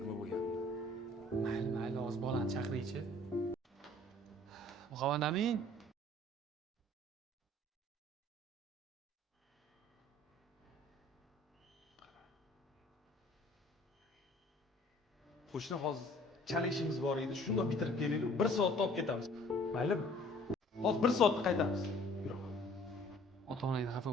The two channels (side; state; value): both; normal; correlation 0.53